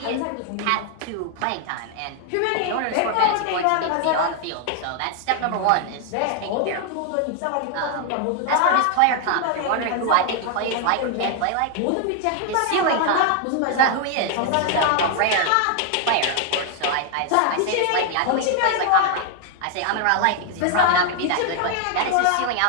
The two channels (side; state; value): both; different; correlation 0.00